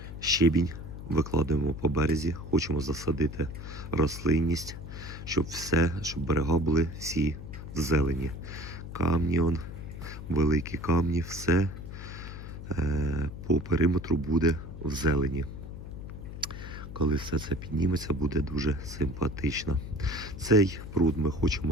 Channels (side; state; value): left; noise; hum, 10 dB below the sound